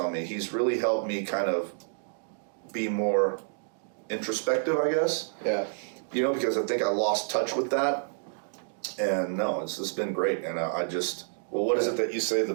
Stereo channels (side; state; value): left; silent; digital silence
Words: me. He's really helped me kind of be more introspective, I guess. Yeah. Because I think I lost touch with that. And no, it's been great. And I just, what is it that you say the